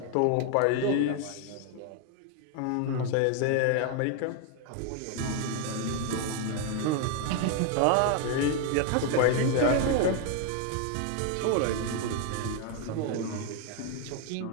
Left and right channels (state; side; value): different; both; correlation 0.01